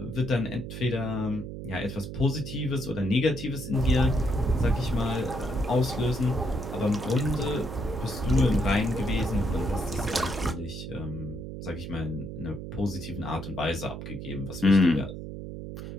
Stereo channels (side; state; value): right; noise; hum, 8 dB below the sound